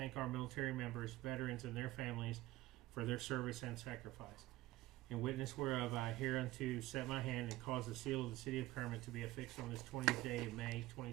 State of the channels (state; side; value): quieter; left; 17.4 dB